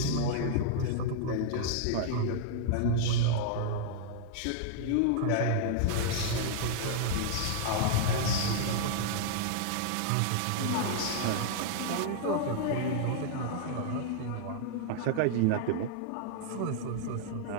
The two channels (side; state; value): both; different; correlation -0.01